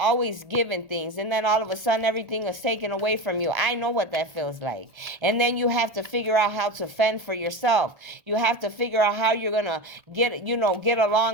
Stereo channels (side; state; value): left; late; 1.3 ms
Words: given things. And then all of a sudden everything is taken away from you. I know what that feels like. And then you have to figure out how to fend for yourself. You have to figure out how you're going to get